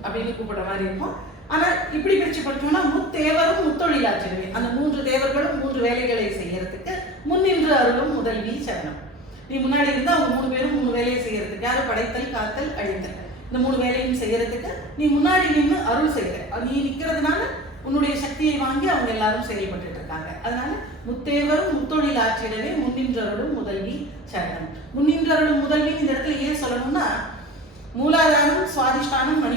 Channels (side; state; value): both; normal; correlation 0.36